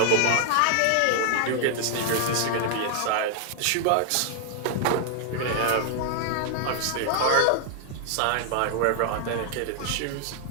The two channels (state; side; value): different; both; correlation 0.00